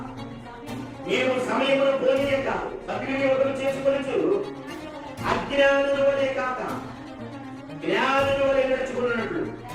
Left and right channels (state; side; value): identical; both; correlation 1.00